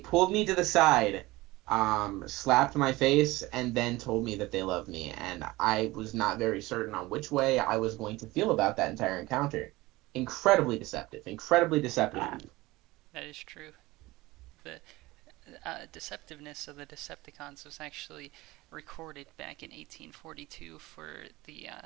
me to the side, slapped my face, and then told me that they loved me, and I was not very certain on which way I was going to feel about that entire encounter. Incredibly deceptive. Incredibly deceptive. That is true. The deceptiveness of the Decepticons was actually recorded back in 1842 for the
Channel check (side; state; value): left; quieter; 20.0 dB